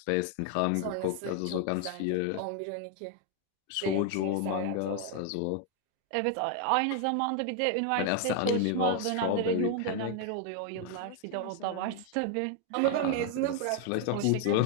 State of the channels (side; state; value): both; different; correlation 0.00